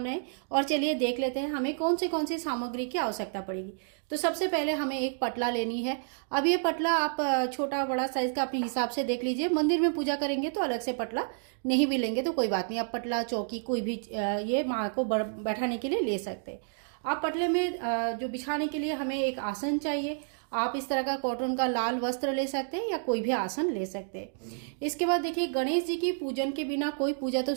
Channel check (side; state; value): left; silent; digital silence